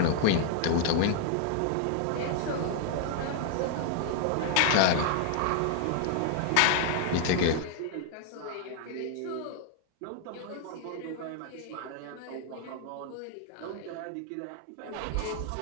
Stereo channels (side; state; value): both; different; correlation 0.00